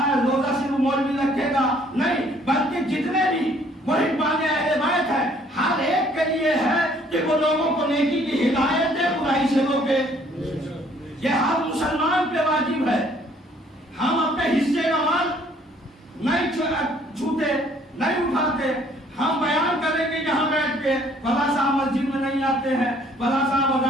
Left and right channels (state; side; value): normal; both; correlation 0.61